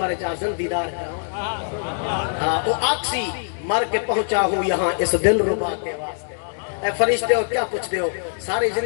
جازن دیدار کرا وہ آکسی مر کے پہنچا ہوں یہاں اس دل ربا کے واسطے اے فرشتے ہو کیا پوچھتے ہو ساری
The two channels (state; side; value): silent; right; digital silence